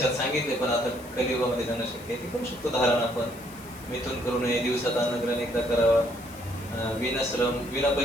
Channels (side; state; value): left; noise; hiss, 20 dB below the sound